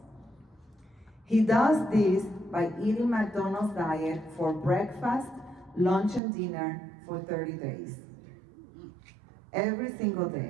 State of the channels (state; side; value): drops out; left; at 6.2 s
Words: He does this by eating McDonald's diet for breakfast, lunch, and dinner for 30 days. Every single